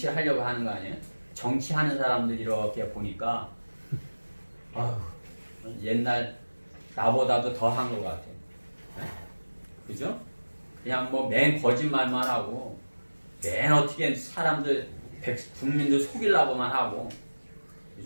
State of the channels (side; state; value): both; inverted; correlation -1.00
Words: 하려고 하는 거 아니에요? 정치하는 사람들 이렇게 보니까 옛날 나보다도 더 한 것 같아요. 그죠? 그냥 뭐 맨 거짓말만 하고 맨 어떻게 사람들 국민들 속이려고만 하고